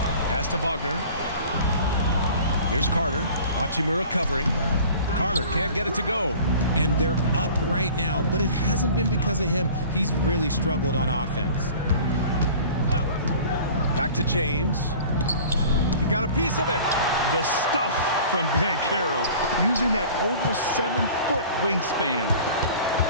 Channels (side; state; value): both; inverted; correlation -0.44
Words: Pass to Wagner. Here's Carter. Hachimura covering. Carter can't get it to go. And they're up right now, but it hasn't been because of him. He's really struggled on offense. Back to James. He got a piece of it. The stuff from Banchero, using that over 7-foot wingspan.